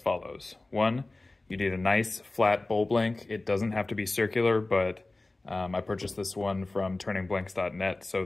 One, you need a nice flat bowl blank. It doesn't have to be circular, but I purchased this one from turningblanks.net, so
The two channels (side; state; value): right; quieter; 3.0 dB